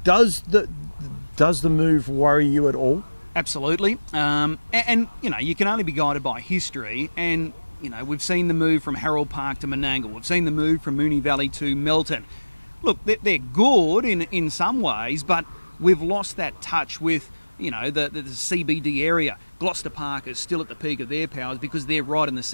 Does the move worry you at all? Absolutely. And you can only be guided by history, and we've seen the move from Harold Park to Menangle. We've seen the move from Moonee Valley to Melton. Look, they're good in some ways, but we've lost that touch with the CBD area. Gloucester Park is still at the peak of their powers because they're right in the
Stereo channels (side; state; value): both; inverted; correlation -1.00